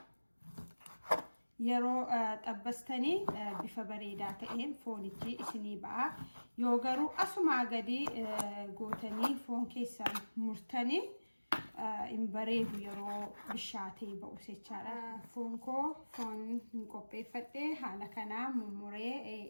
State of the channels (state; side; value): inverted; both; correlation -1.00